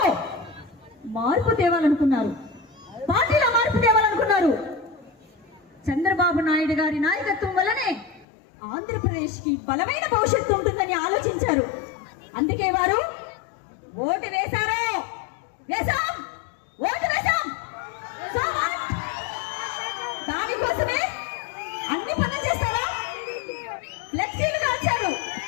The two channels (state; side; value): drops out; right; at 8.2 s